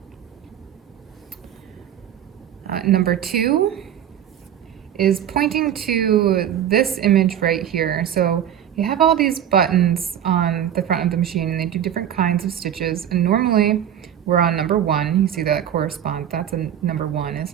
Number two is pointing to this image right here. So you have all these buttons on the front of the machine and they do different kinds of stitches, and normally we're on number one. You see that correspond, that's a number one, it's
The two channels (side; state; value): left; quieter; 10.1 dB